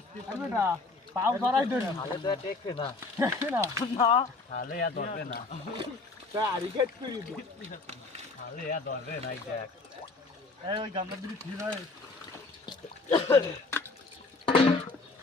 পারবো না পাও ধরাই ধরি তাহলে তো টেকবে না না তাহলে আর ধরবে না তা আরিকেট করি দি তাহলে আর ধরবে না এই দেখ এই ওই গামলা দিবি ঠিক হয়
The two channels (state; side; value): quieter; right; 3.6 dB